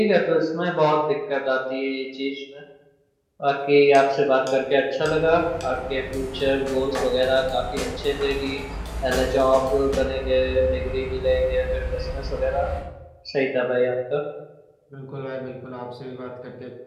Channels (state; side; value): identical; both; correlation 1.00